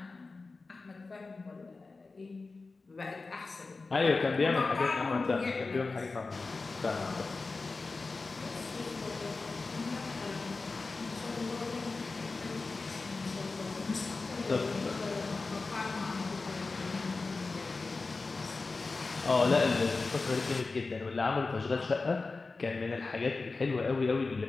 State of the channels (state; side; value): quieter; right; 3.8 dB